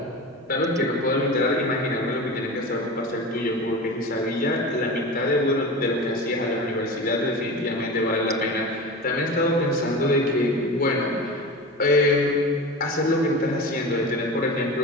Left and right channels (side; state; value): both; normal; correlation 0.30